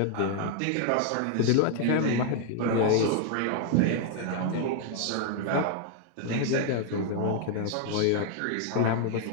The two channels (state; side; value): different; both; correlation 0.00